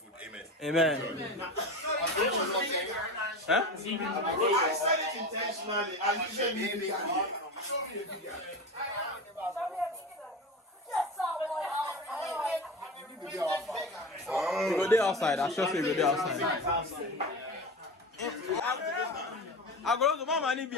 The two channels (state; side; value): normal; both; correlation 0.27